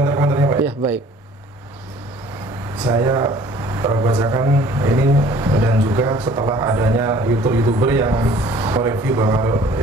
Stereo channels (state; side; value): normal; both; correlation 0.52